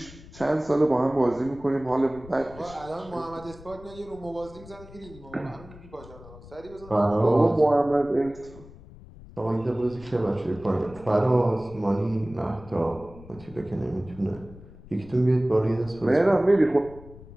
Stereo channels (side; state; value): left; noise; rumble, 19 dB below the sound